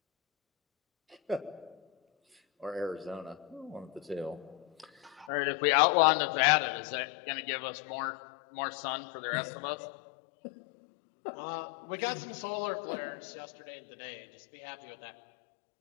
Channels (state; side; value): drops out; right; at 5.3 s